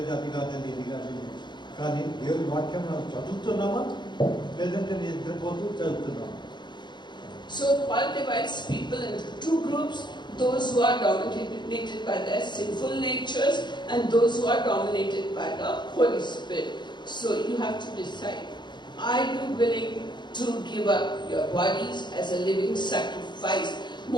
అది కాదని ఇది కాదని. కానీ దేవుని వాక్యం మనం చదువుతున్నామా, లేదంటే నిద్రపోతూ చదువుతున్నామా? So Paul divides people into two groups, those who are dominated by their sinful natures and those who are dominated by the Holy Spirit. So you have to decide, are you willing to give up your bodies as a living sacrifice?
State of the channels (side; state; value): right; late; 0.22 ms